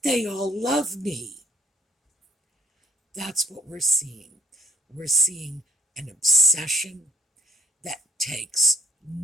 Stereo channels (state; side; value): normal; both; correlation 0.64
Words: they all love me. That's what we're seeing. We're seeing an obsession that takes